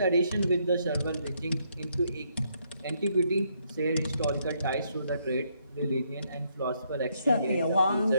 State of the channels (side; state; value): both; inverted; correlation -0.74